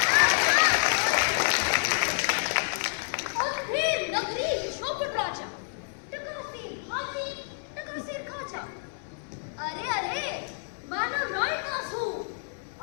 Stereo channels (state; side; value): silent; right; 59 dB below the other